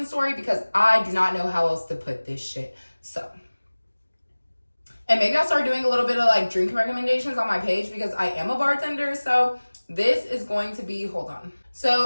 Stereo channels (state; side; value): inverted; both; correlation -1.00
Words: story, because I do not know how else to put this shit. So, and maybe I'll start doing a little bit of like drink recommendations on my page, because I am a bartender. So this is going to be, hold on.